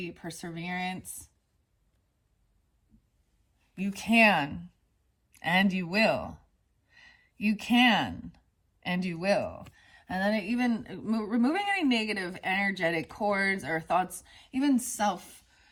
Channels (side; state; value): both; identical; correlation 1.00